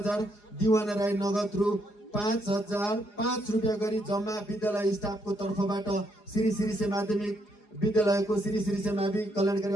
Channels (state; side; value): late; right; 4.8 ms